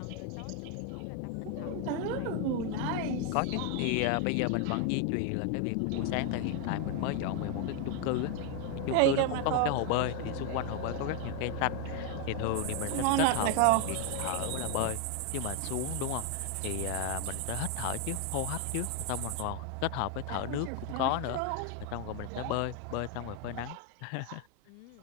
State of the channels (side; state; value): both; different; correlation 0.01